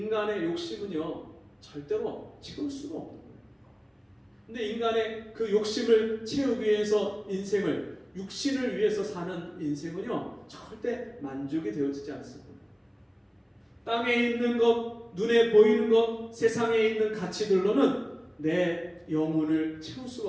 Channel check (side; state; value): both; identical; correlation 1.00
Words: 욕심은요, 절대로 채울 수가 없는 거예요. 근데 인간의 그 욕심을 채우기 위해서 인생을 육신을 위해서 사는 인생은요, 절대 만족이 되어지지 않습니다. 땅에 있는 것, 눈에 보이는 것, 세상에 있는 가치들로는 내 영혼을 채울